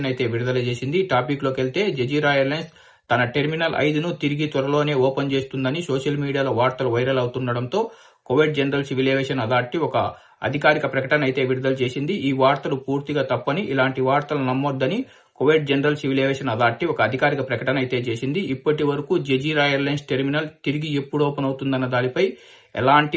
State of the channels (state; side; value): identical; both; correlation 1.00